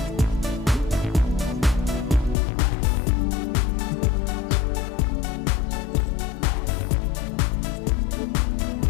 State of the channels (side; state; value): right; drops out; at 2.4 s